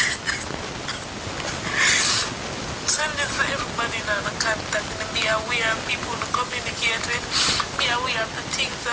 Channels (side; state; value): both; identical; correlation 1.00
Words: Send this for everybody now to contact and be aware of people to communicate with. Be aware of the things